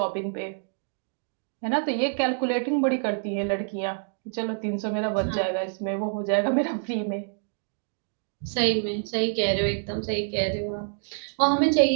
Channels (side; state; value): left; silent; digital silence